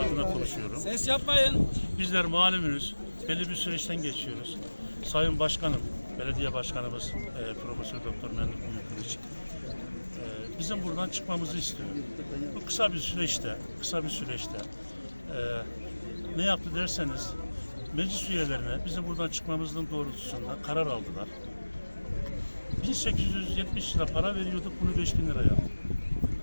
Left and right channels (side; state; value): both; inverted; correlation -1.00